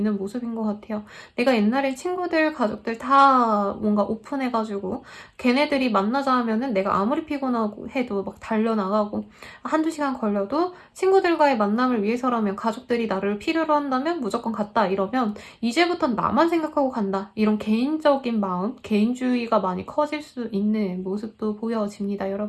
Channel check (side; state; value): both; identical; correlation 1.00